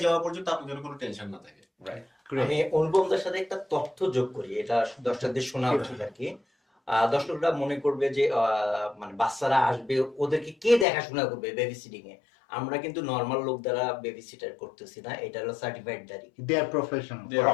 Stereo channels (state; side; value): drops out; right; at 10.9 s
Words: যাওয়া পর্যন্ত আপনার জন্য কোনো টেনশন না থাকে। রাইট। আমি অনুপমদার সাথে একটা তথ্য যোগ করি, এটা দর্শকদের শোনা উচিত আর কি। দর্শকরা মনে করবে যে মানে বাচ্চারা আসবে, ওদেরকে কে দেখাশোনা করবে বেবি সিটিং এ? আমরা কিন্তু নর্মাল লোক দ্বারা বেবি সিটার করতেছি না, এটা হলো সার্টিফাইড দাঁড়ি, দে আর প্রফেশনাল।